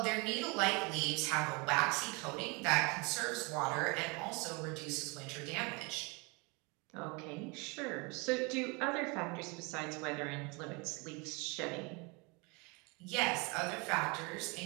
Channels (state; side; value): quieter; left; 29.2 dB